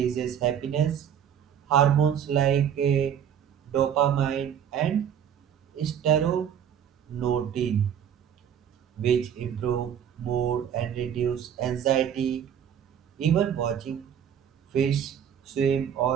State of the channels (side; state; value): left; quieter; 8.9 dB